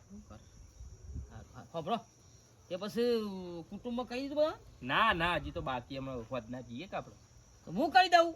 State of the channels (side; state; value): both; identical; correlation 1.00